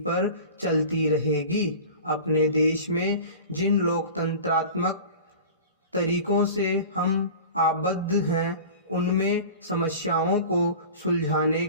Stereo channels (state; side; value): inverted; both; correlation -0.37